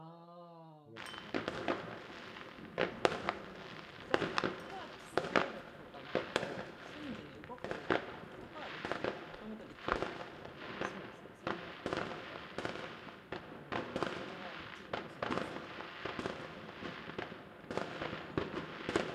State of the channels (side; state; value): both; identical; correlation 1.00